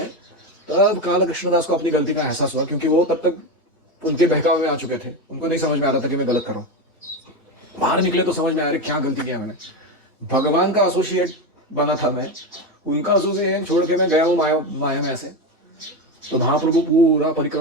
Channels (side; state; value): both; normal; correlation 0.16